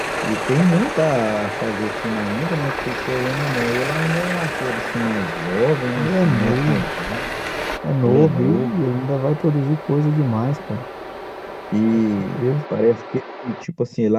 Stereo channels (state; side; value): identical; both; correlation 1.00